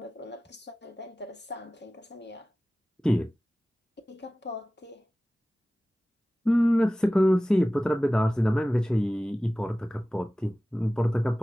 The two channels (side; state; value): both; normal; correlation 0.97